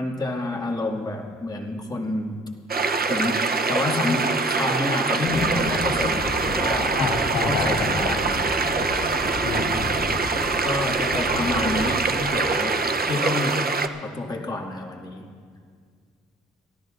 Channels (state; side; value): normal; both; correlation 0.48